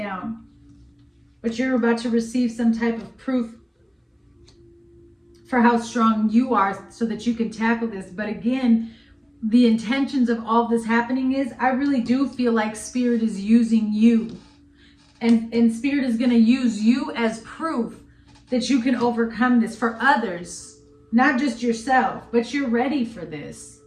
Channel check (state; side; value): identical; both; correlation 1.00